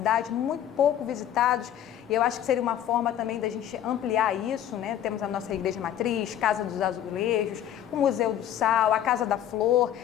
muito pouco visitados, e eu acho que seria uma forma também da gente ampliar isso, né? Temos a nossa Igreja Matriz, Casa dos Azulejos, o Museu do Sal, a Casa da Flor.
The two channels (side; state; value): right; quieter; 10.8 dB